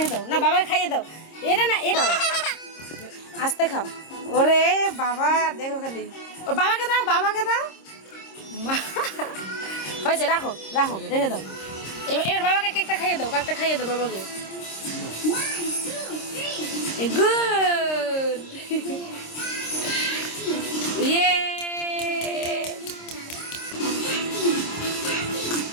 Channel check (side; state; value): right; late; 26 ms